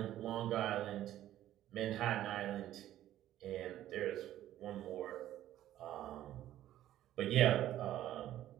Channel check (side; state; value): left; quieter; 13.0 dB